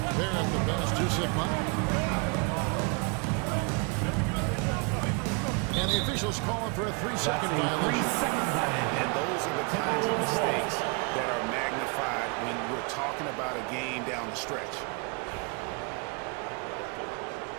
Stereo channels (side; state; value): left; quieter; 33.3 dB